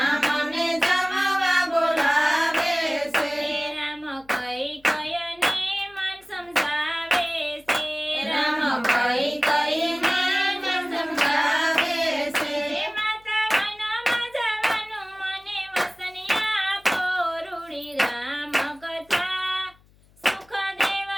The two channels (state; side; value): noise; left; hum, 30 dB below the sound